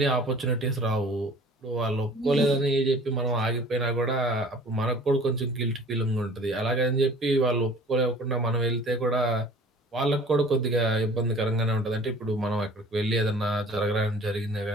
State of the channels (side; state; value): both; normal; correlation 0.48